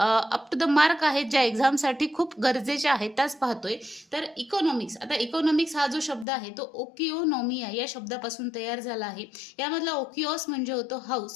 टू द मार्क आहेत, ज्या एक्झामसाठी खूप गरजेच्या आहेत त्याच पाहतोय, तर इकॉनॉमिक्स. आता इकॉनॉमिक्स हा जो शब्द आहे तो ओकिओनॉमिया या शब्दापासून तयार झाला आहे. यामधला ओकिओस म्हणजे होतो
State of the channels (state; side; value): drops out; right; at 6.2 s